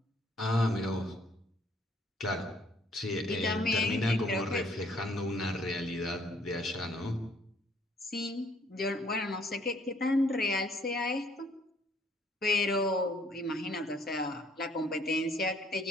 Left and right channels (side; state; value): both; normal; correlation 0.63